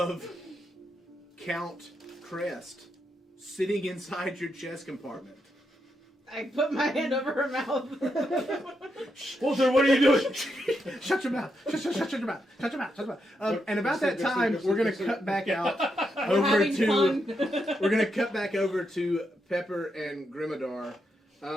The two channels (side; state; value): both; normal; correlation 0.82